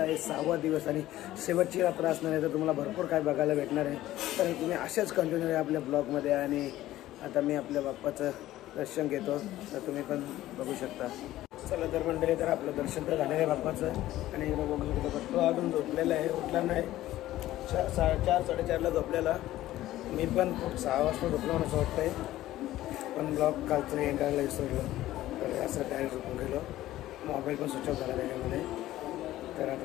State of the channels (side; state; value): right; quieter; 14.9 dB